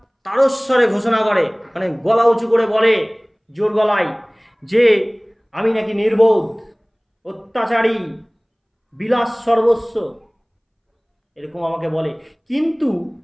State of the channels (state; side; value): identical; both; correlation 1.00